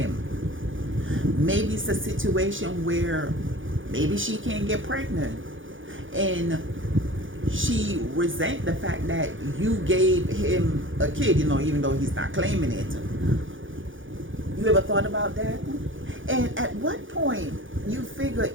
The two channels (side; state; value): left; late; 0.57 ms